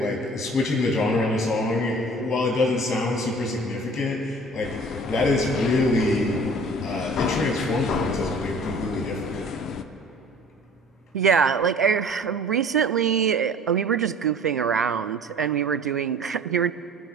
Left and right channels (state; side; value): normal; both; correlation 0.47